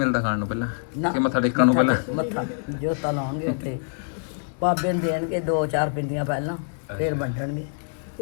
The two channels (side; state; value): right; silent; digital silence